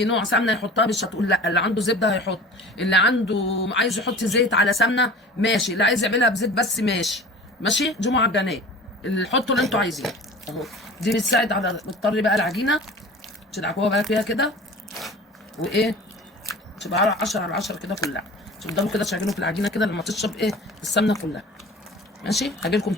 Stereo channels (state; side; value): normal; both; correlation 0.40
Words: نوع سمنه يحطها مش هتقول لا، اللي عنده زبده هيحط، اللي عنده عايز يحط زيت على سمنه ماشي، اللي عايز يعملها بزيت بس ماشي. ماشي، دي معجنات اللي حطوا اللي انتوا عايزينه اهو. دي بتساعد على بتطري بقى العجينه، تدعكوها بقى فيها كده وايه، تبقى 10 على 10 كده كلها. تفضلوا كده تشغلوا في العجينه كده لما تشرب ايه السمنه كلها. ماشي، هاجي لكم